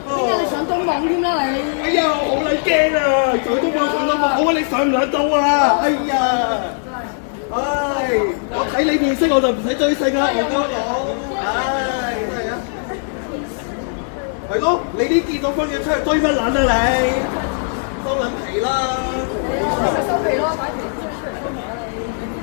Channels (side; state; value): right; silent; digital silence